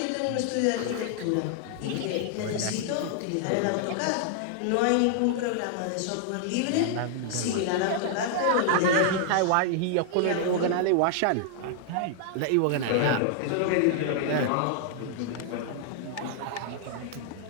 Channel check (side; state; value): both; different; correlation 0.00